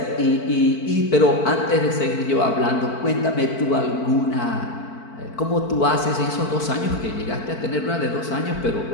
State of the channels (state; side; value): late; right; 4.5 ms